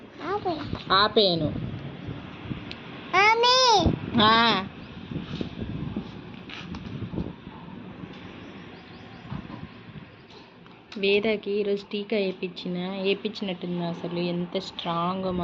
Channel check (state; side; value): identical; both; correlation 1.00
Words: ఆపేను. వేదకి ఈరోజు టీకా వేయించినట్టుంది. అసలు ఎంత స్ట్రాంగ్